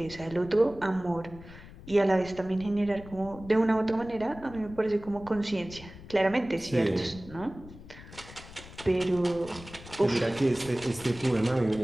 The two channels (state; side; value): noise; left; rumble, 17 dB below the sound